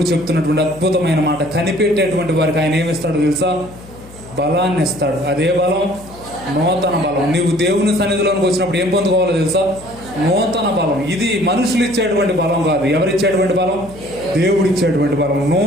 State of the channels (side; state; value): left; noise; hum, 19 dB below the sound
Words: చెప్తున్నటువంటి అద్భుతమైన మాట, కనిపెట్టేటువంటి వారికి ఆయన ఏమిస్తాడో తెలుసా? బలాన్ని ఇస్తాడు. అదే బలం? నూతన బలం. నీవు దేవుని సన్నిధిలోకి వచ్చినప్పుడు ఏం పొందుకోవాలో తెలుసా? నూతన బలం. ఇది మనుషులు ఇచ్చేటువంటి బలం కాదు. ఎవరిచ్చేటువంటి బలం? దేవుడు ఇచ్చేటువంటి బలం.